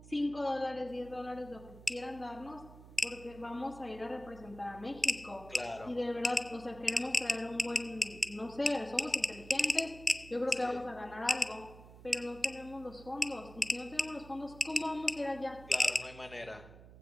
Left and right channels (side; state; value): right; noise; hum, 18 dB below the sound